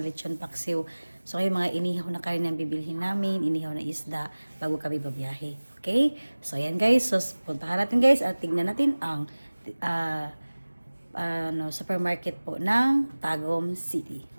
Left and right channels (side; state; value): both; inverted; correlation -1.00